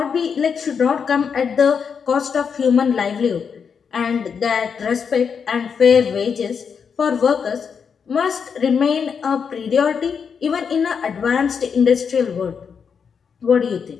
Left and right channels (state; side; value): quieter; right; 6.5 dB